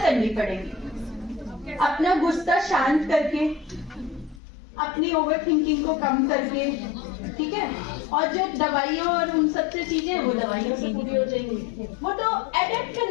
करनी पड़ेगी, अपना गुस्सा शांत करके, अपनी ओवर थिंकिंग को कम करके, ठीक है। और जो दवाइयों और उन सब से चीजें वो दवाइयों से पूरी हो जाएंगी, वो तो अडेप्ट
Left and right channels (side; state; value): right; drops out; at 4.4 s